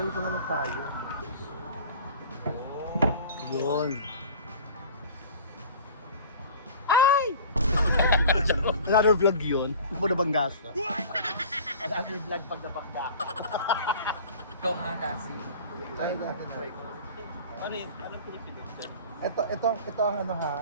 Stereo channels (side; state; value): both; inverted; correlation -0.42